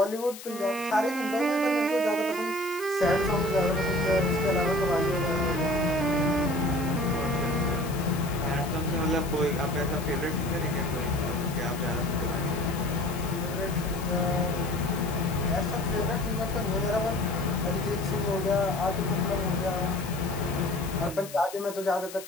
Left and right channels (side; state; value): left; noise; hiss, 14 dB below the sound